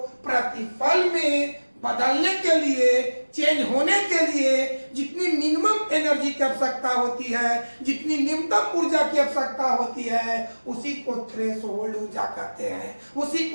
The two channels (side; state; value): both; inverted; correlation -1.00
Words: प्रतिफल में बदलने के लिए, चेंज होने के लिए जितनी मिनिमम एनर्जी की आवश्यकता होती है, जितनी न्यूनतम ऊर्जा की आवश्यकता होती है, उसी को थ्रेशोल्ड ऊर्जा कहते हैं, उसी